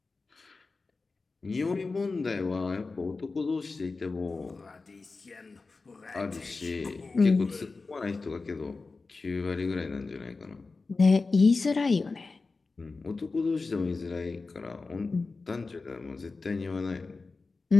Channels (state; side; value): quieter; right; 3.9 dB